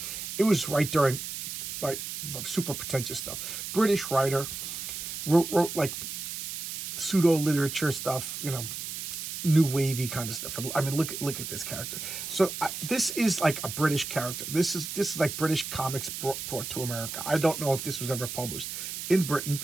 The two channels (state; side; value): noise; right; hiss, 6 dB below the sound